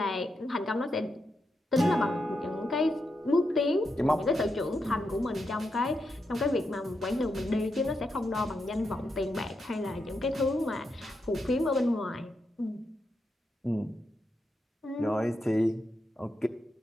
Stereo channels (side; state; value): both; normal; correlation 0.84